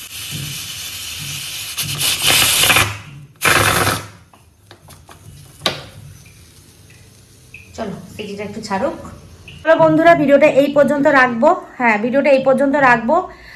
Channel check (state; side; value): identical; both; correlation 1.00